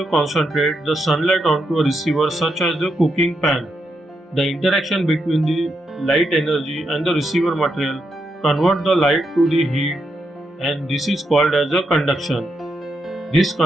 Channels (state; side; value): normal; both; correlation 0.82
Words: concentrates the sunlight onto a receiver such as the cooking pan. The interaction between the light energy and the receiver material convert the light to the heat, and this is called as a conduction. This